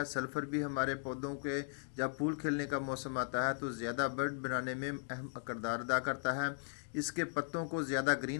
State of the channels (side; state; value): right; silent; digital silence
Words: सल्फ़र भी हमारे पौधों के जब फूल खिलने का मौसम आता है तो ज़्यादा बर्ड बनाने में अहम किरदार अदा करता है। इसके पत्तों को ज़्यादा